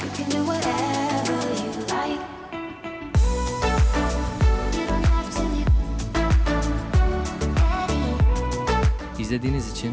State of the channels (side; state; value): both; identical; correlation 1.00